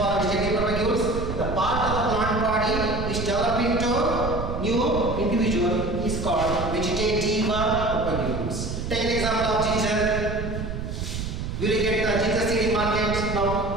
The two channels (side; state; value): right; noise; rumble, 5 dB below the sound